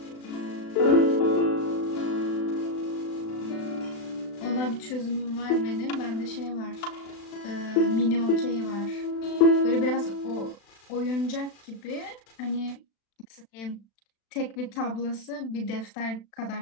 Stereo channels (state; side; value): late; right; 36 ms